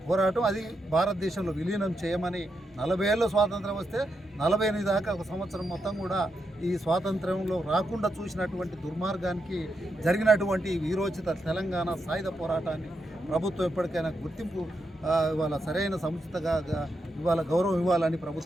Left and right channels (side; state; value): both; normal; correlation 0.84